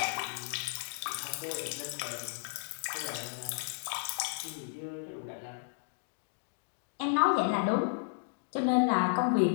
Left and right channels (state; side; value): silent; right; digital silence